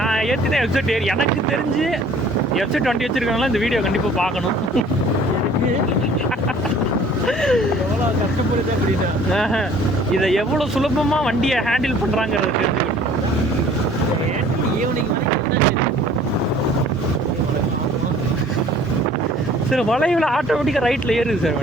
ஏற்றினேன் வெப்சைட் ஏறி எனக்கு தெரிஞ்சு வெப்சைட் 20 வச்சுருக்காங்களா இந்த வீடியோ கண்டிப்பாக பார்க்கணும். எவ்வளோ கஷ்டப்படுது அப்படின்னா இதை எவ்வளோ சுலபமாக வண்டியை ஹேண்டில் பண்ணுறாங்கிறது தெரிஞ்சு ஈவினிங் வரைக்கும் சார் வளைவில் ஆட்டோமேட்டிக்காக ரைட்டில் ஏறுது சார்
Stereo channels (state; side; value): normal; both; correlation 0.52